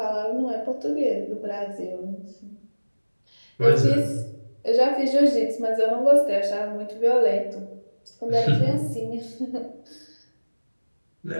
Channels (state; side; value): inverted; both; correlation -1.00